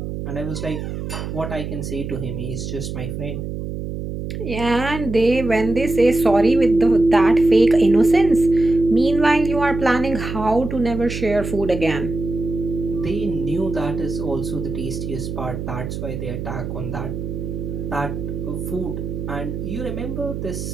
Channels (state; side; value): noise; right; hum, 6 dB below the sound